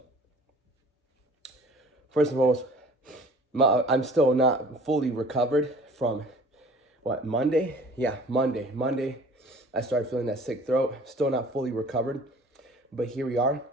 first and foremost, I'm still not fully recovered from, Monday? Yeah, Monday. Monday, I started feeling that sick throat. Still not fully recovered, but here we are.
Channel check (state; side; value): normal; both; correlation 0.48